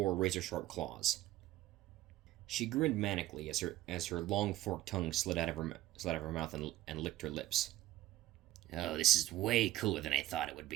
razor-sharp claws. She grinned manically as her long forked tongue slid out of her mouth and licked her lips. Oh, this is way cooler than I thought it would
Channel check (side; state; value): left; quieter; 15.3 dB